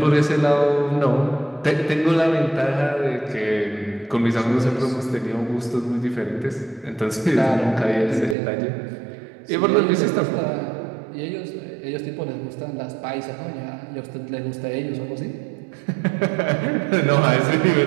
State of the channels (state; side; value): drops out; left; at 8.3 s